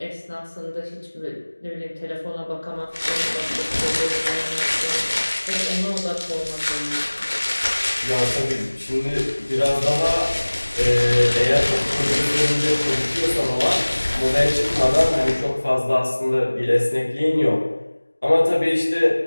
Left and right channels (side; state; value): both; inverted; correlation -1.00